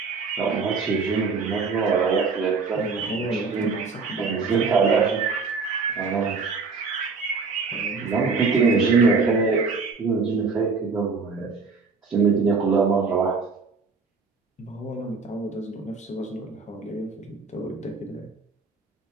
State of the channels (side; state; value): left; quieter; 4.6 dB